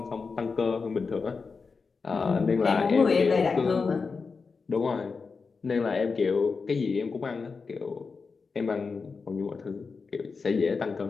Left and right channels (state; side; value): quieter; right; 4.8 dB